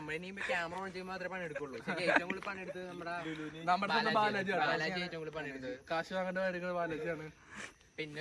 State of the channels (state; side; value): identical; both; correlation 1.00